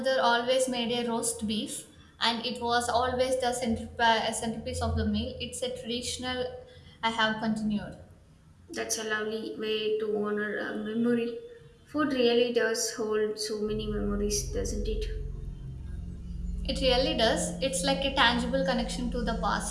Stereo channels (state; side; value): identical; both; correlation 1.00